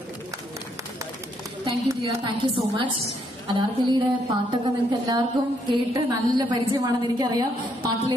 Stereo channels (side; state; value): both; normal; correlation 0.73